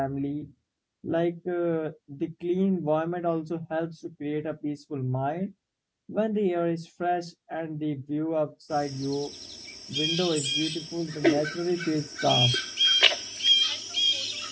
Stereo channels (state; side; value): identical; both; correlation 1.00